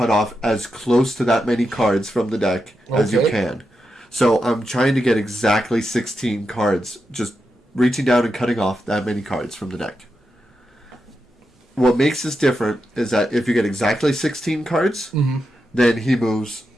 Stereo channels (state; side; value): normal; both; correlation 0.87